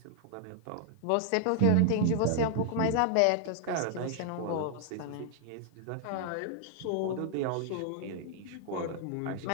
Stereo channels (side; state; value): both; different; correlation -0.01